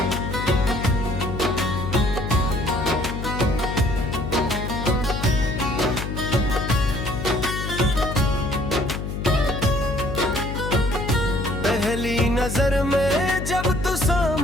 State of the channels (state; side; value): noise; left; hum, 5 dB below the sound